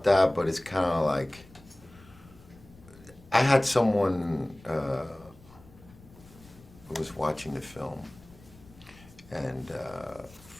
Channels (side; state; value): left; noise; rumble, 23 dB below the sound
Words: that, but it's kind of like, I had someone who was watching the film, and